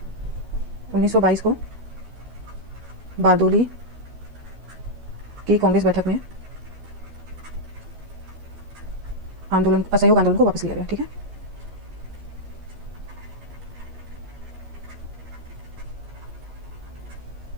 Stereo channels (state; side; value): late; left; 12 ms